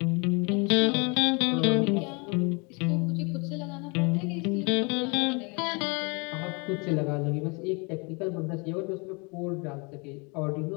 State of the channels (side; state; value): right; quieter; 30.9 dB